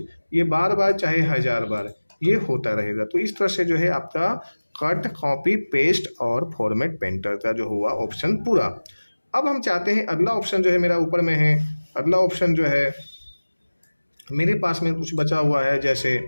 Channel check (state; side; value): inverted; both; correlation -1.00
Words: ये बार बार चाहे 1000 बार ये होता रहेगा। तो इस तरह से जो है आपका कट, कॉपी, पेस्ट और फॉर्मेट पेंटर का जो हुआ ऑप्शन पूरा। अब हम चाहते हैं अगला ऑप्शन जो है मेरा ऊपर में है, अगला ऑप्शन जो है मेरे पास में कुछ बचा हुआ है, जैसे